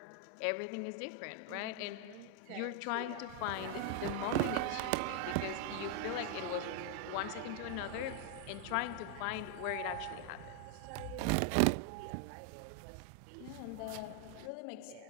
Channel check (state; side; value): different; both; correlation 0.00